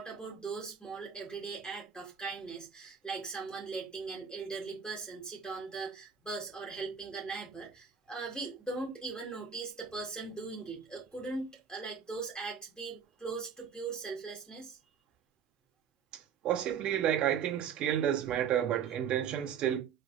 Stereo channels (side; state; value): left; quieter; 7.3 dB